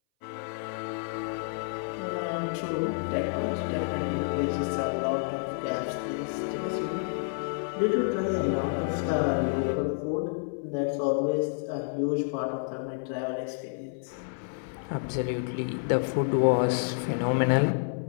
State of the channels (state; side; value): silent; right; 58 dB below the other